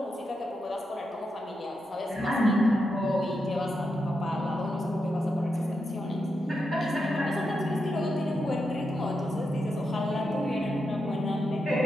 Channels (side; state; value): both; normal; correlation 0.86